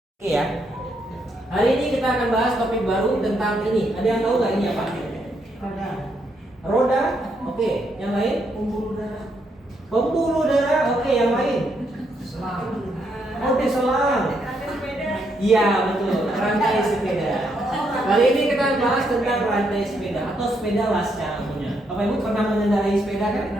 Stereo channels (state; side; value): normal; both; correlation 0.76